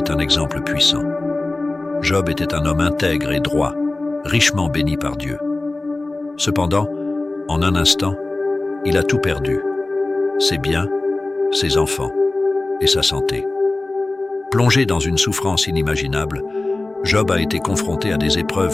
un exemple puissant. Job était un homme intègre et droit, richement béni par Dieu. Cependant, en un instant, il a tout perdu, ses biens, ses enfants et sa santé. Plongé dans une souffrance inimaginable, Job a été confronté à des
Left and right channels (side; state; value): right; quieter; 3.0 dB